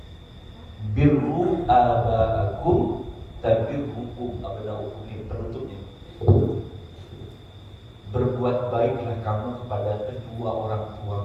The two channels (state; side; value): identical; both; correlation 1.00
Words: birru abaakum tabirrukum abnaukum. Ini penutupnya. Berbuat baiklah kamu kepada kedua orang